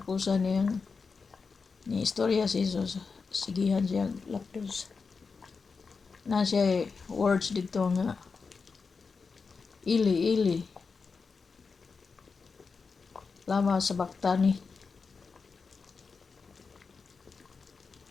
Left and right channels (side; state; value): right; quieter; 4.9 dB